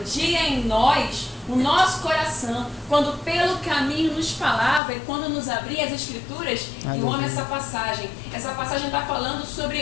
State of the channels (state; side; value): drops out; right; at 4.8 s